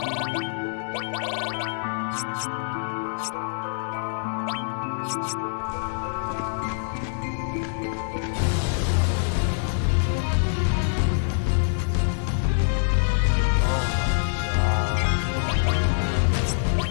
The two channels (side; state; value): right; silent; digital silence